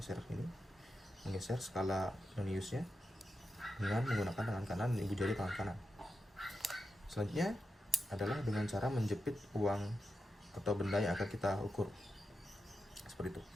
menggeser skala noniusnya dengan menggunakan tangan kanan dan ibu jari tangan kanan. Selanjutnya adalah dengan cara menjepit uang atau benda yang akan kita ukur seperti itu.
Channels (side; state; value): both; normal; correlation 0.89